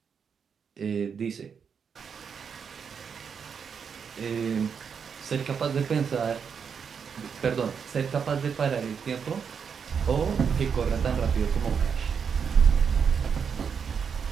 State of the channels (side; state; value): left; quieter; 6.6 dB